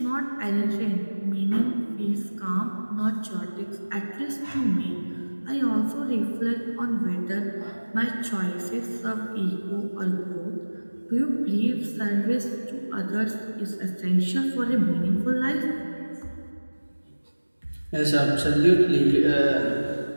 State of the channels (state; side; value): inverted; both; correlation -1.00